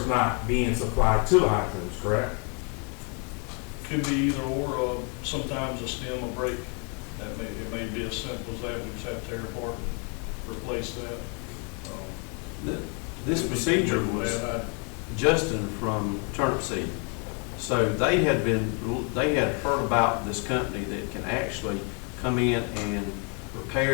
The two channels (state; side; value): quieter; right; 37.0 dB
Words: not being supplied to the hydrants, correct? Could be either or, sometimes a stem will break. It may be as simple as that, we just have to tear apart and replace that. This procedure was Justin from Turnip Seed. So they had heard about this company that can actually come in and